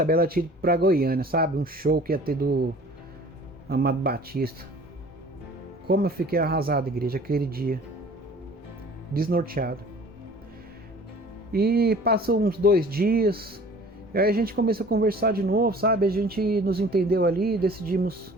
ela tinha ido pra Goiânia, sabe? Um show que ia ter do Amado Batista. Como eu fiquei arrasado, igreja, aquele dia. Desnorteado. E passou uns 2 dias. E aí a gente começou a conversar de novo, sabe? A gente nos entendeu ali, decidimos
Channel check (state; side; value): normal; both; correlation 0.48